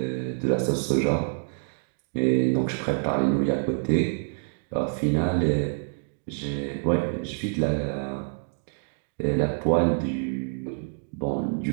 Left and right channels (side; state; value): left; silent; digital silence